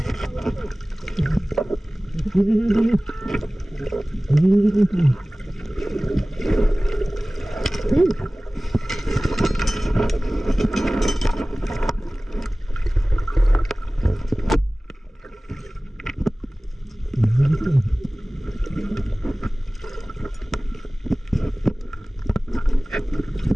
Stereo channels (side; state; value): both; normal; correlation 0.98